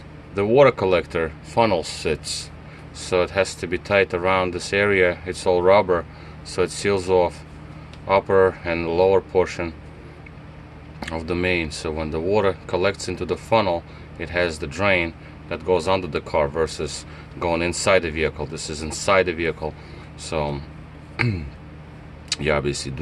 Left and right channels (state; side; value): identical; both; correlation 1.00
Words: the water collector funnel sits, so it has to be tight around this area. It's all rubber, so it seals off upper and lower portion of the main. So when the water collects into the funnel, it has the drain that goes under the car versus going inside the vehicle. This is inside the vehicle, so you obviously do